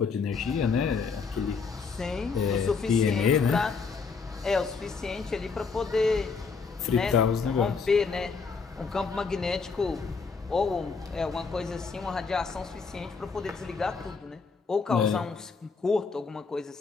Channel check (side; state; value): right; quieter; 5.0 dB